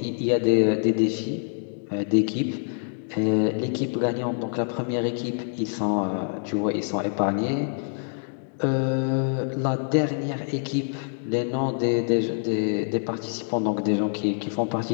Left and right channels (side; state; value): right; silent; digital silence